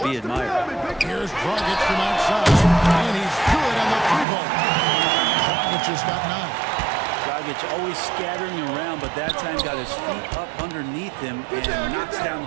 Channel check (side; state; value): left; drops out; at 4.2 s